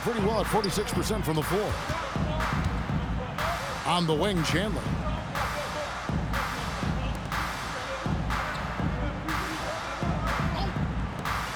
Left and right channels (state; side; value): identical; both; correlation 1.00